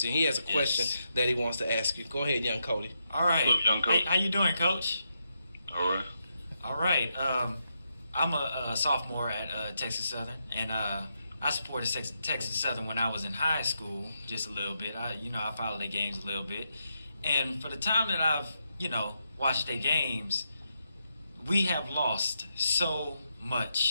And he has a question that he wants to ask you. Go ahead, Young Cody. All right. What's up, Young Cody? Hey, how you doing, Coach? All right. I'm a sophomore at Texas Southern, and I supported Texas Southern when I was in high school, just a little bit. I followed their games a little bit, and for the time that I've watched their games, we have lost so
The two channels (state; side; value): inverted; both; correlation -0.82